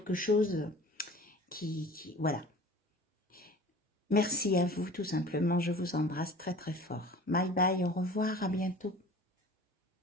chose voilà. Merci à vous, tout simplement. Je vous embrasse très très fort. Bye bye, au revoir, à bientôt.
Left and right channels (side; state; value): both; normal; correlation 0.42